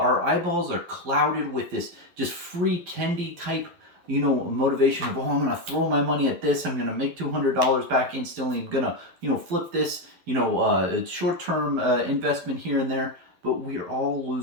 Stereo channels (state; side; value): late; left; 11 ms